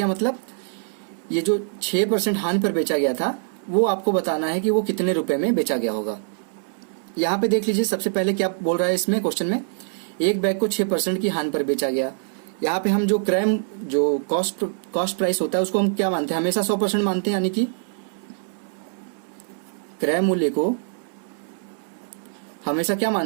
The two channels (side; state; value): left; silent; 63 dB below the other